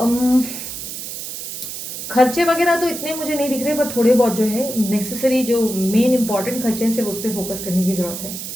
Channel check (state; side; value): noise; right; hiss, 8 dB below the sound